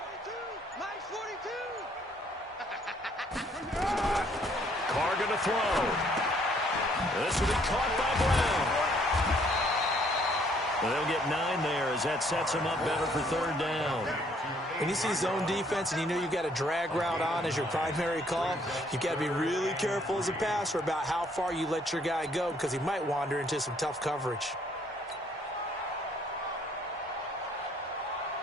42. Mike's 42. Carr going to throw. This will be caught by Brown. Well, they'll get 9 there as that sets them up better for third down. When you see zone defense and you know you've got a drag route on as your primary call, you've got to be really careful as a passer about how far you let your guy go because he might wander into some tough coverage.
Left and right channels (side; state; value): both; normal; correlation 0.65